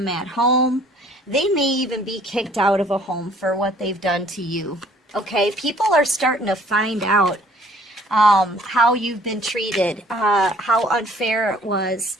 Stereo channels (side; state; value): both; normal; correlation 0.57